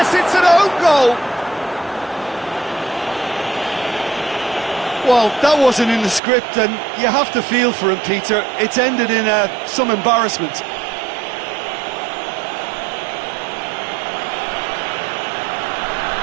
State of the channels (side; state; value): left; drops out; at 6.2 s